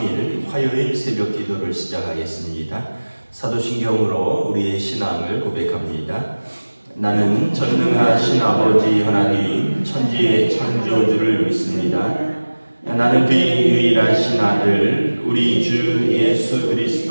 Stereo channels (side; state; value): both; inverted; correlation -1.00